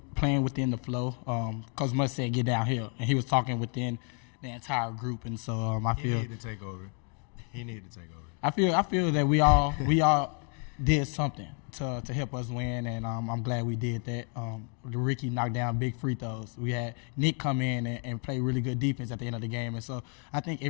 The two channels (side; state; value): right; quieter; 38.4 dB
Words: the flow. Coach Mutz said get downhill, and he was talking within the entire group, and so I feel he needed to take over. I feel that we all did something to help us win, and I'm glad we did that. Ricky knocked down big free throws. We had Nick come in and play really good defense at the end of the game, and so I think